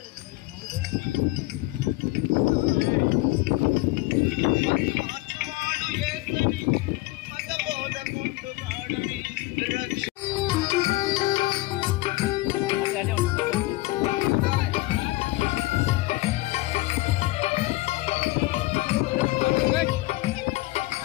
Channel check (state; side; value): quieter; right; 20.1 dB